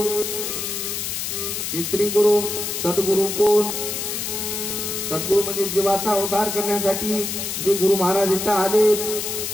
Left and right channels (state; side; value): noise; left; hiss, 3 dB below the sound